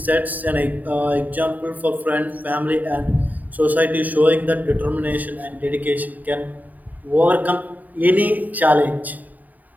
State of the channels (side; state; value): left; late; 0.081 ms